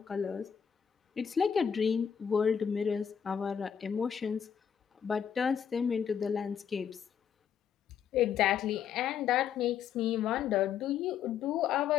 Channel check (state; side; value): quieter; right; 8.0 dB